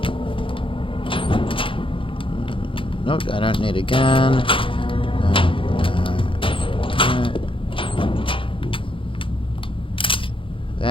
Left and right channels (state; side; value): late; right; 0.25 ms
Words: Nope, I don't need a gun.